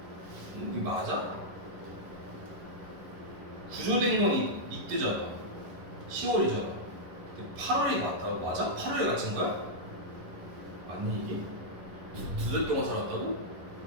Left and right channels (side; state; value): left; late; 11 ms